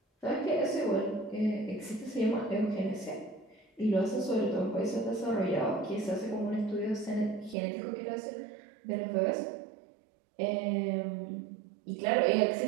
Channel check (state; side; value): drops out; left; at 7.6 s